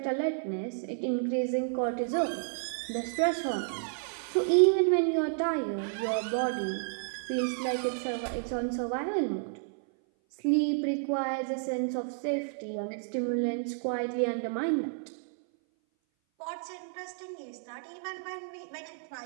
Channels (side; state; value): left; silent; 57 dB below the other